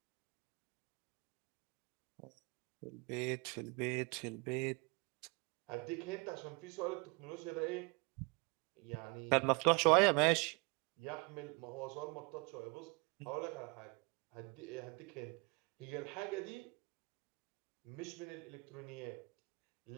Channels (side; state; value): left; quieter; 30.2 dB